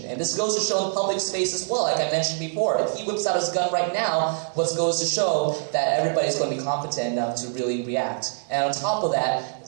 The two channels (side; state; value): left; silent; digital silence